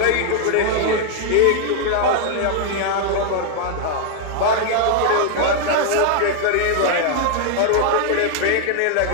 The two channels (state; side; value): different; both; correlation 0.00